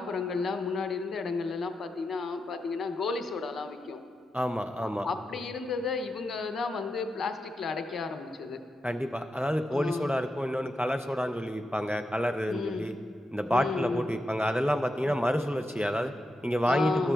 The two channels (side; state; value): both; normal; correlation 0.87